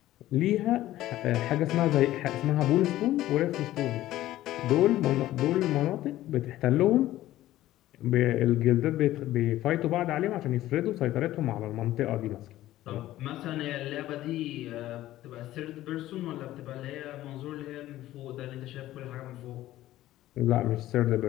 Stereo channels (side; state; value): right; quieter; 14.8 dB